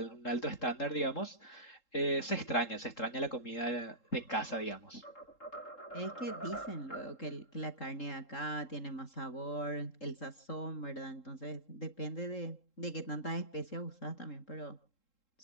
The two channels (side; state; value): right; late; 3.7 ms